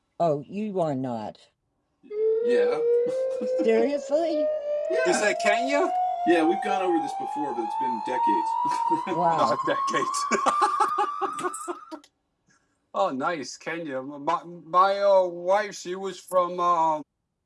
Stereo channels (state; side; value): identical; both; correlation 1.00